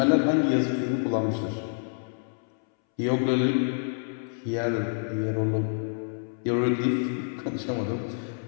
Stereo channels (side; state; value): right; silent; 60 dB below the other